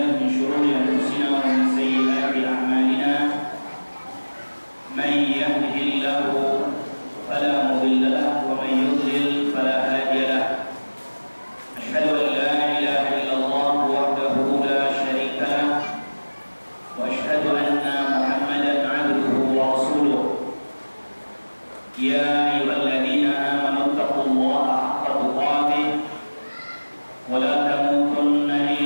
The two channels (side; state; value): both; inverted; correlation -1.00